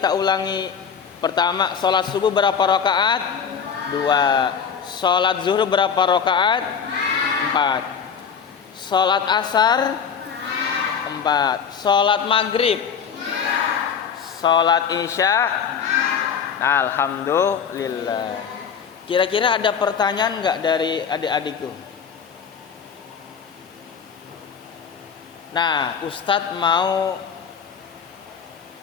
ulangi. Pertama, sholat subuh berapa rokaat? 2. Sholat zuhur berapa rokaat? 4. Sholat asar? 4. Sholat maghrib? Sholat isya? Alhamdulillah. Kira-kira ada pertanyaan nggak dari adik-adikku? Nah, Ustadz mau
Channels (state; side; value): quieter; right; 7.0 dB